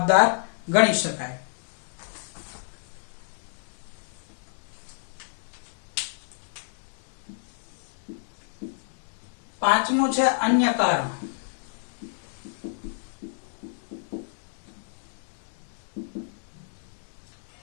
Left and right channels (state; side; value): silent; right; digital silence